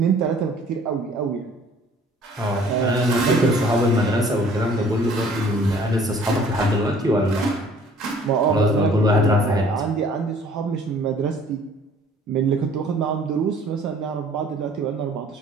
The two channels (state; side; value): normal; both; correlation 0.54